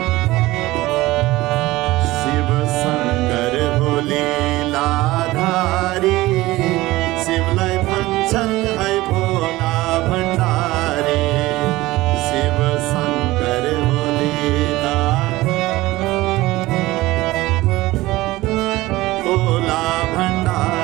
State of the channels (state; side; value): quieter; left; 18.6 dB